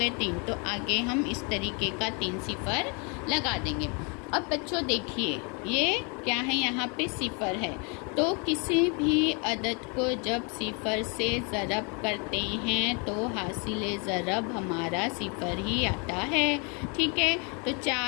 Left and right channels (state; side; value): quieter; right; 34.1 dB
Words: 3, तो आगे हम इस तरीके का 3 सिफर लगा देंगे। अब बच्चों देखिए, ये क्या है, यहाँ पे सिफर है। तो किसी भी अदद को जब सिफर से ज़रब करते हैं तो हासिल ज़रब हमारा सिफर ही आता है। ठीक है, तो